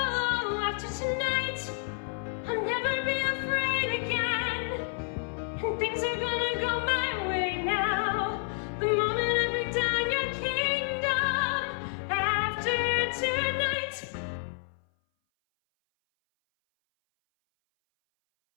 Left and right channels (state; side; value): silent; right; 58 dB below the other